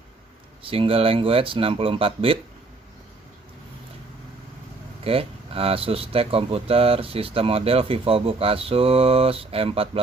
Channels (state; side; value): quieter; left; 3.5 dB